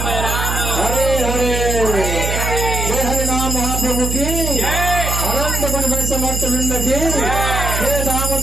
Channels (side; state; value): right; noise; hum, 2 dB below the sound